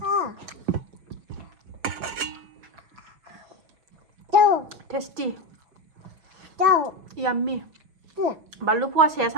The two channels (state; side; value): late; left; 6.1 ms